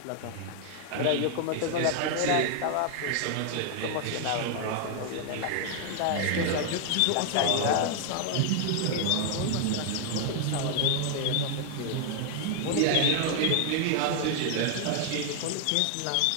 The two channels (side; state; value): both; different; correlation 0.00